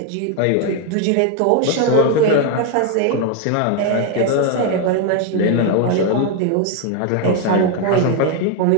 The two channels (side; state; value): both; different; correlation 0.01